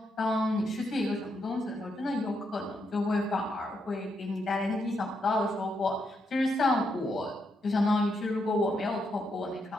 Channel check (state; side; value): normal; both; correlation 0.80